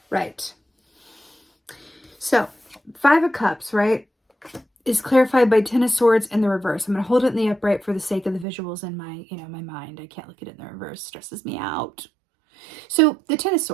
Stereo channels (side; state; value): left; drops out; at 8.5 s